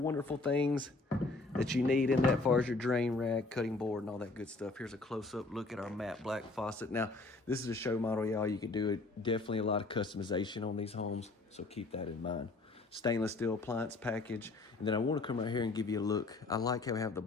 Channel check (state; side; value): quieter; right; 3.4 dB